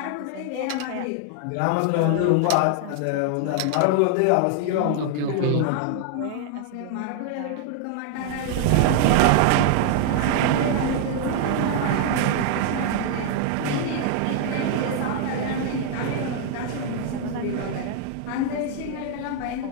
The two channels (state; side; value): different; both; correlation 0.00